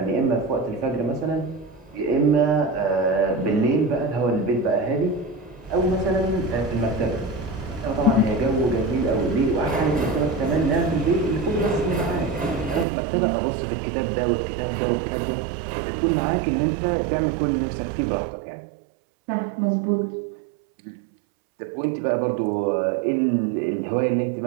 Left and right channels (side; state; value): left; drops out; at 12.9 s